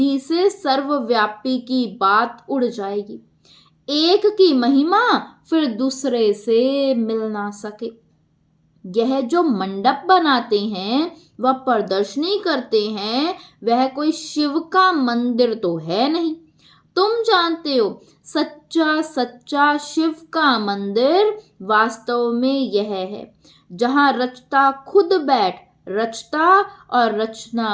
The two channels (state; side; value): identical; both; correlation 1.00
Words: से सर्वव्यापी की बात उड़ जाएगी। एक की महिमा फिर दूसरे से मिल ना सके। यह जो मंडप बनाते हैं, वह प्रदर्शनी करते हैं, वह कोई शिव का मंदिर तो है नहीं। तुम जानते हो, सच्चा सच्चा शिव का मंदिर वास्तव में यह है जहां रचता खुद बैठ रचता और